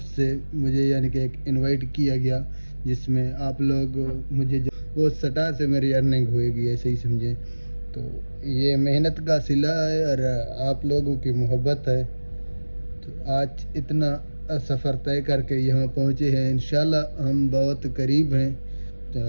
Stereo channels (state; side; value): inverted; both; correlation -1.00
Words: سے مجھے یعنی کہ ایک انوائٹ کیا گیا، جس میں آپ لوگ مجھے وہ سٹار سے میری ارننگ ہوئے گی، ایسے ہی سمجھیں۔ تو یہ محنت کا صلہ ہے اور آپ لوگوں کی محبت ہے۔ تو آج اتنا سفر طے کر کے یہاں پہنچے ہیں، انشاءاللہ ہم بہت قریب ہیں تو